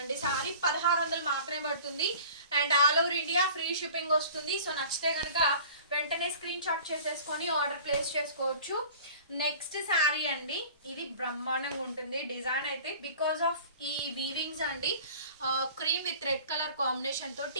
సారీ. 1600 మాత్రమే పడుతుంది and all over India free shipping వస్తుంది. సో నచ్చితే కనుక వెంటనే స్క్రీన్ షాట్ చేసేసుకొని ఆర్డర్ ప్లేస్ చేసుకోవచ్చు. నెక్స్ట్ శారీ అండి, ఇది బ్రహ్మాండంగా ఉంటుంది డిజైన్ అయితే బికాస్ ఆఫ్ ఈ వీవింగ్స్ అండి. Cream with red colour combination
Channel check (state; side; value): inverted; both; correlation -0.44